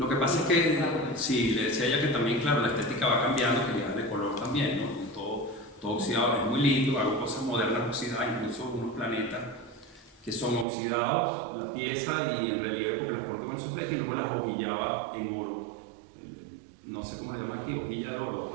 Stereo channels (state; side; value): drops out; left; at 10.7 s